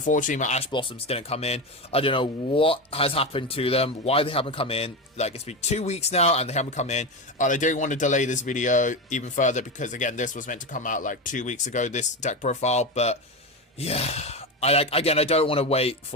my Ash Blossoms didn't come in. I don't know what has happened to them, why they haven't come in. Like, it's been 2 weeks now and they haven't come in, and I don't want to delay this video even further because, again, this was meant to come out like 2 weeks ago, this deck profile, but yeah. I don't want to wait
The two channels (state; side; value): normal; both; correlation 0.17